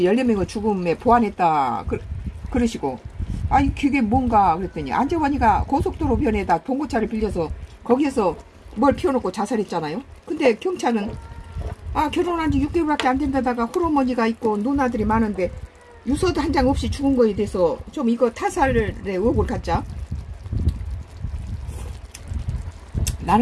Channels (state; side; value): identical; both; correlation 1.00